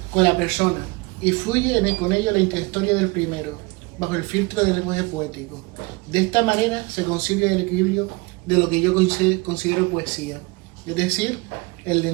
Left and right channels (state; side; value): quieter; left; 25.8 dB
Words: con la persona, y fluye con ello la intrahistoria del primero, bajo el filtro del lenguaje poético. De esta manera se consigue el equilibrio de lo que yo considero poesía, es decir, el